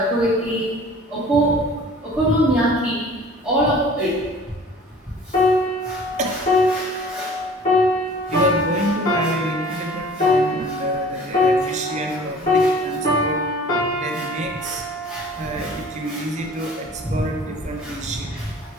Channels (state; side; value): normal; both; correlation 0.47